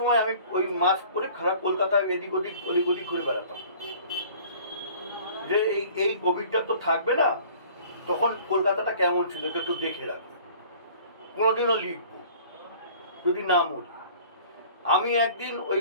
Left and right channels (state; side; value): inverted; both; correlation -0.49